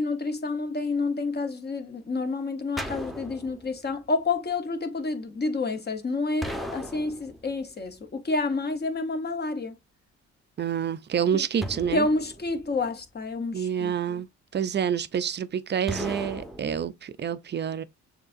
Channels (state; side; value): normal; both; correlation 0.30